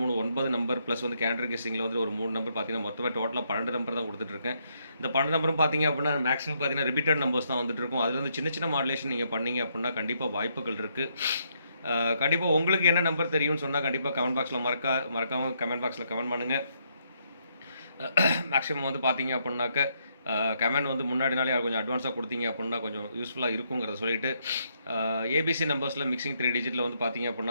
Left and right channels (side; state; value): both; inverted; correlation -0.75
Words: 3, 9 நம்பர் ப்ளஸ் வந்து கேண்டர் கெஸ்ஸிங்கில் வந்து ஒரு 3 நம்பர் பார்த்தீங்கன்னா மொத்தமாக டோட்டலாக 12 நம்பர் தான் கொடுத்துட்ருக்கேன். இந்த 12 நம்பரும் பார்த்தீங்க அப்படின்னா மேக்ஸிமம் பார்த்தீங்கன்னா ரிப்பீட்டட் நம்பர்ஸ் தான் வந்துட்டு இருக்கும். அதில் வந்து சின்ன சின்ன மாடுலேஷன் நீங்கள் பண்ணீங்க அப்படின்னா கண்டிப்பாக வாய்ப்புகள் இருக்குது. கண்டிப்பாக உங்களுக்கு என்ன நம்பர் தெரியும்னு சொன்னால் கண்டிப்பாக கமெண்ட் பாக்ஸில் மறக்காமல் கமெண்ட் பாக்ஸில் கமெண்ட் பண்ணுங்கள். மேக்ஸிமம் வந்து பார்த்தீங்க அப்படின்னாக்க கமெண்ட் வந்து முன்னாடி நாளே கொஞ்சம் அட்வான்ஸாக கொடுத்தீங்க அப்படின்னா கொஞ்சம் யூஸ்ஃபுல்லாக இருக்குங்கிறத சொல்லிட்டு ஏபிசி நம்பர்ஸில் மிக்சிங் 3 டிஜிட்டில் வந்து பார்த்தீங்க